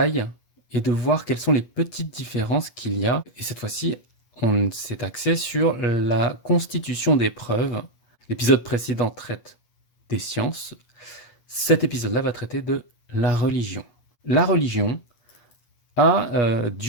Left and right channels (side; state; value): right; late; 8.3 ms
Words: et de voir quelles sont les petites différences qu'il y a. Et cette fois-ci, on s'est axé sur la constitution des preuves. L'épisode précédent traite des sciences. Cet épisode-là va traiter de la religion. La religion a